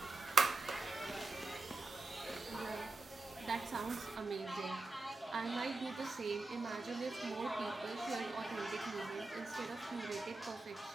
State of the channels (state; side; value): quieter; left; 3.3 dB